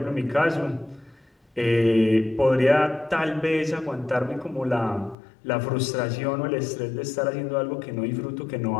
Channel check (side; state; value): right; drops out; at 5.2 s